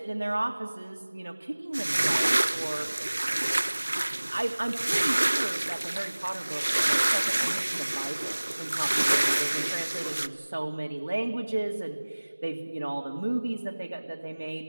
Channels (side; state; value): both; inverted; correlation -1.00